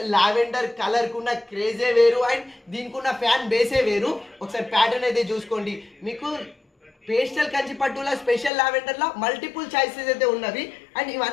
లావెండర్ కలర్ కున్న క్రేజే వేరు అండ్ దీనికి ఉన్న ఫ్యాన్ బేసే వేరు. ఒకసారి ప్యాటర్న్ అయితే చూసుకోండి. మీకు పేస్టల్ కంచి పట్టులో స్పెషల్ లావెండర్ లో మల్టిపుల్ చాయిసెస్ అయితే ఉన్నవి అండ్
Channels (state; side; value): drops out; right; at 8.5 s